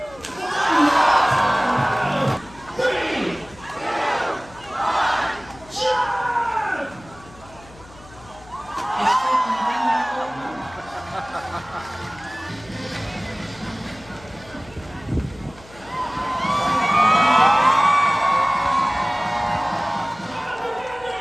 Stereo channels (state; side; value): noise; left; hum, 22 dB below the sound